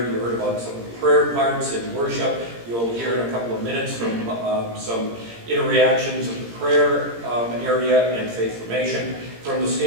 you heard about some of the prayer parts and worship. You'll hear in a couple of minutes from some interactions of the prayer area and faith formation. From the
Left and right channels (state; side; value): late; left; 17 ms